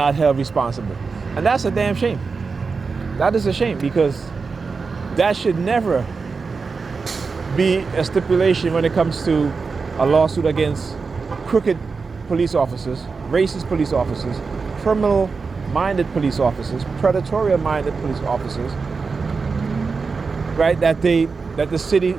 held responsible. And that's a damn shame. That is a shame because that should never be a stipulation when it comes to a lawsuit against crooked police officers, racist police officers, criminal-minded police officers, predatory-minded police officers, right? That they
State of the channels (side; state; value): left; quieter; 4.7 dB